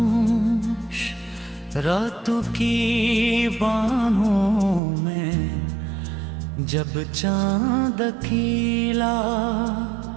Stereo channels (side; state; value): left; drops out; at 4.8 s